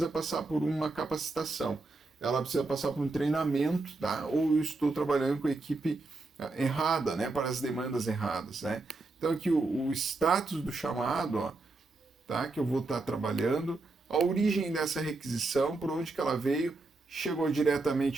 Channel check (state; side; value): quieter; left; 3.4 dB